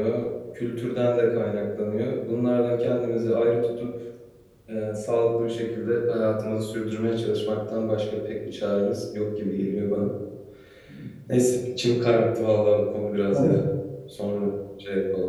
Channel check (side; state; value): both; identical; correlation 1.00